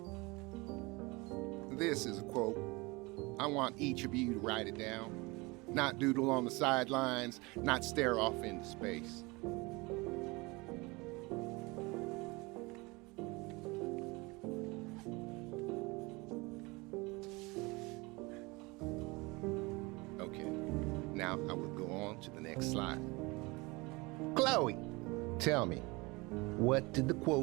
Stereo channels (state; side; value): quieter; left; 24.9 dB